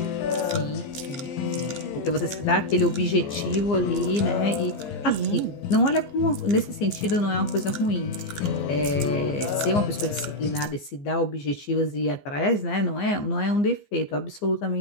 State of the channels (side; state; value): right; late; 15 ms